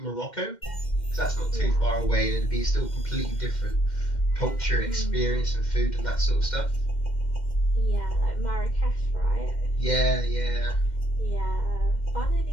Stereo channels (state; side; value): late; right; 2.1 ms